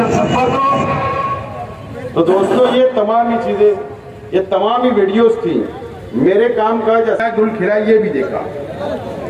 संपवतो तो दोस्तों ये तमाम ही चीजें ये तमाम ही वीडियोस थी मेरे काम का जैसा गुल खिला ये भी देखा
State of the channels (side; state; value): both; identical; correlation 1.00